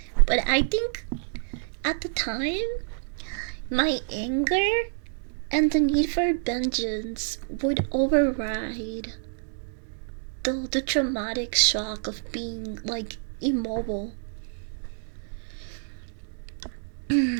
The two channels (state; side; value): silent; left; digital silence